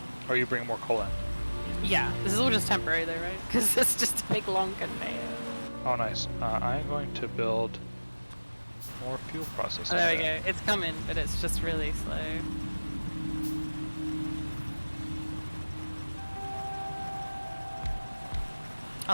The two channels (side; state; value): both; inverted; correlation -1.00